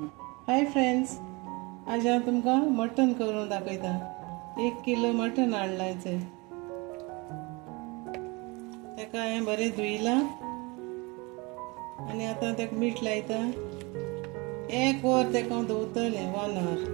friends, आज हांव तुमकां मटन करून दाखयता। 1 किलो मटन हाडलायचें, तेका हांवें बरें धुयलां आनी आतां तेका मीठ लायता। 1 वर तेका दवरतलें, 1 hour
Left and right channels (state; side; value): quieter; left; 26.6 dB